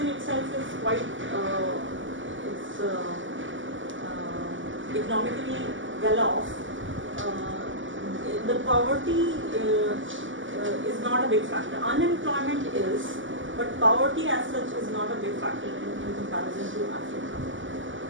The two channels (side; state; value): left; late; 0.56 ms